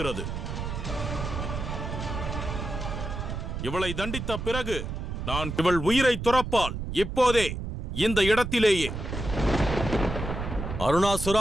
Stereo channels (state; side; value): noise; right; rumble, 5 dB below the sound